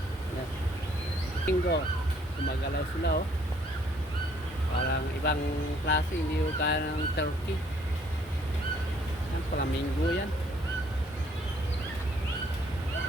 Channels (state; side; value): normal; both; correlation 0.63